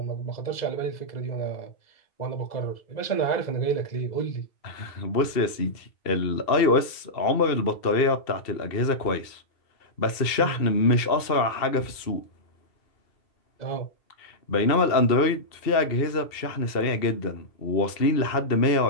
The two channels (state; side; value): late; right; 2.7 ms